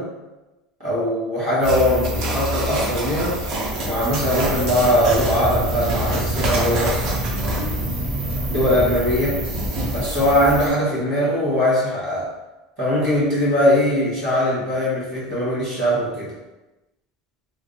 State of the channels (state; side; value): normal; both; correlation 0.33